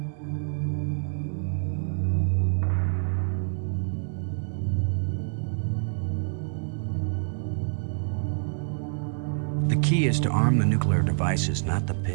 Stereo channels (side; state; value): left; silent; digital silence